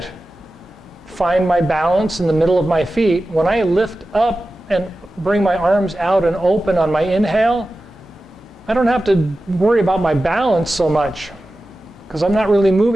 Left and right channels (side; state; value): both; normal; correlation 0.94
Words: find my balance in the middle of my feet, when I lift up and bring my arms out and open on my inhale, I don't have to worry about my balance so much because I'm not really